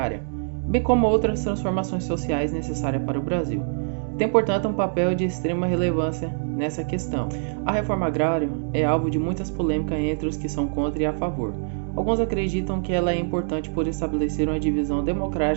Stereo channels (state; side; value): silent; left; digital silence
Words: bem como outras transformações sociais necessárias para o Brasil. Tem, portanto, um papel de extrema relevância nessa questão. A reforma agrária é alvo de muitas polêmicas entre os que são contra e a favor. Alguns acreditam que ela é importante por estabelecer uma divisão